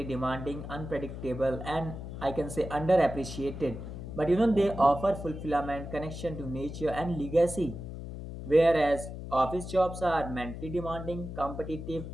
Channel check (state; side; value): noise; left; hum, 9 dB below the sound